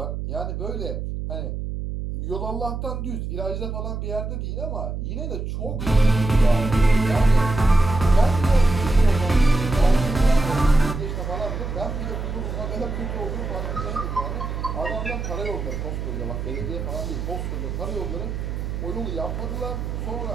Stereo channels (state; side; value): noise; right; hum, 5 dB below the sound